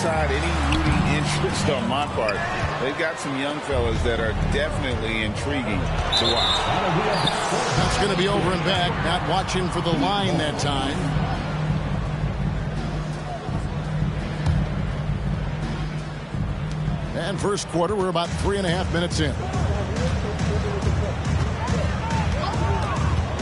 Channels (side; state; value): both; identical; correlation 1.00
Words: any rooting interest on my part, they've got some young fellas that are definitely intriguing to watch. That's going to be over and back, not watching for the line that time. And first quarter, we're about 3.5 minutes in.